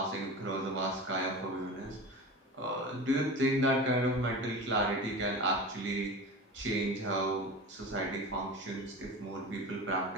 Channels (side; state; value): both; normal; correlation 0.31